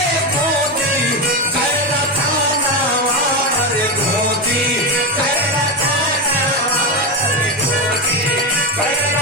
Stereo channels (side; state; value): both; normal; correlation 0.14